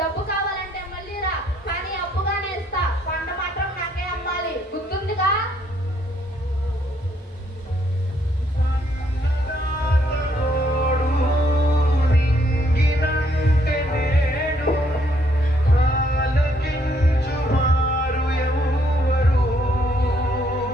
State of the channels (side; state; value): both; normal; correlation 0.70